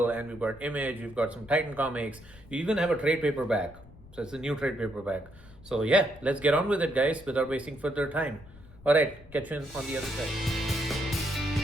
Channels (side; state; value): left; noise; rumble, 21 dB below the sound